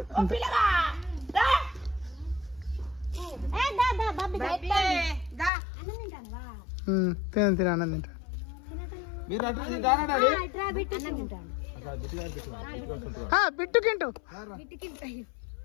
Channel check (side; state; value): right; drops out; at 5.5 s